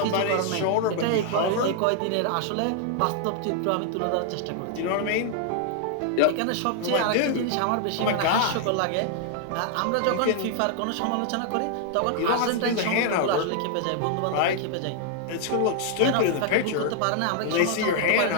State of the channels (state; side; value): different; both; correlation 0.00